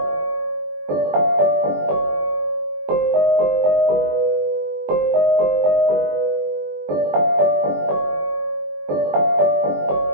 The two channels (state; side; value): late; left; 21 ms